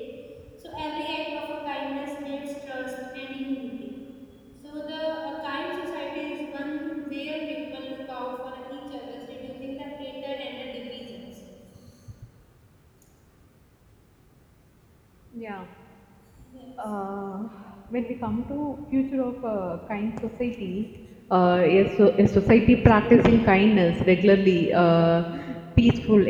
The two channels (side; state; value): both; identical; correlation 1.00